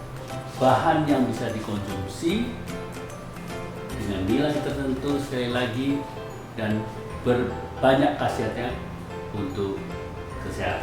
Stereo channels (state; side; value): identical; both; correlation 1.00